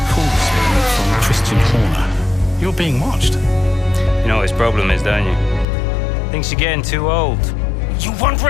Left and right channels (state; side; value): drops out; right; at 5.7 s